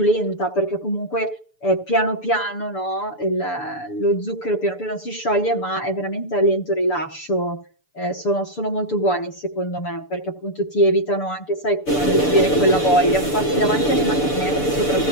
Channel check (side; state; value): right; late; 6.9 ms